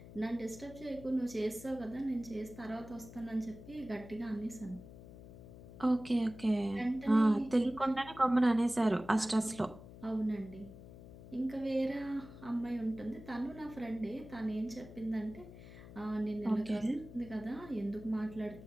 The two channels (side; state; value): left; noise; hum, 16 dB below the sound